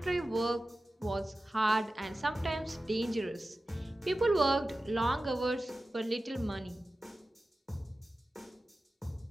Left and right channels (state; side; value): normal; both; correlation 0.94